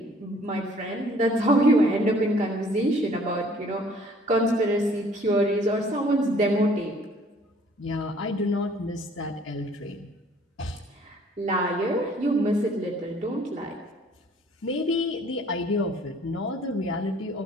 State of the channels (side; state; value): both; normal; correlation 0.57